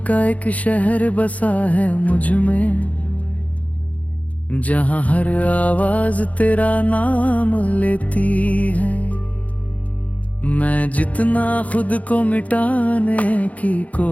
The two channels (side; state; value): right; late; 0.069 ms